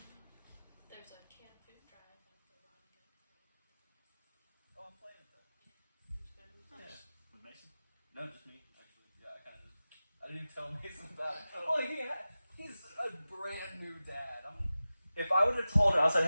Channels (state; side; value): inverted; both; correlation -0.96